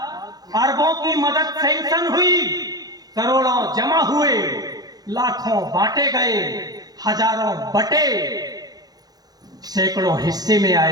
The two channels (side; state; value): left; late; 0.19 ms